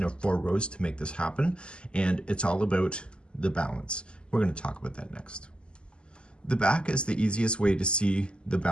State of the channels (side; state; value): right; late; 0.050 ms